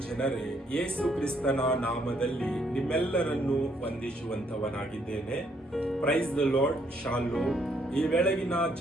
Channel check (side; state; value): both; normal; correlation 0.70